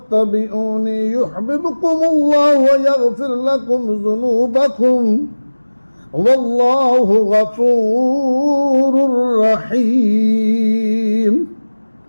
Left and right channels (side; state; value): both; inverted; correlation -1.00